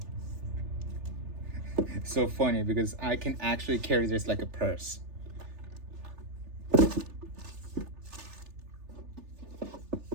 So funny because I can actually carry this like a purse.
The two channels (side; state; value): left; late; 3.4 ms